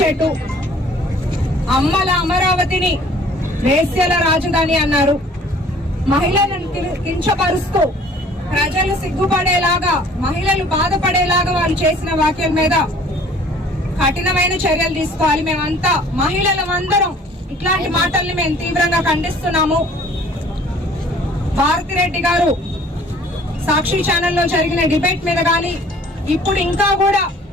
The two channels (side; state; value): both; normal; correlation 0.52